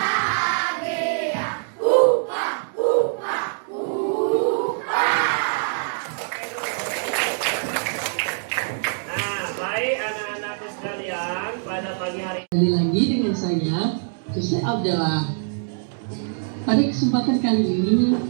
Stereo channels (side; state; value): left; silent; digital silence